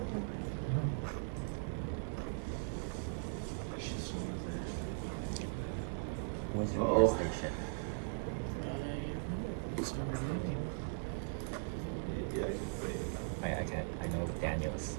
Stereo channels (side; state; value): left; silent; digital silence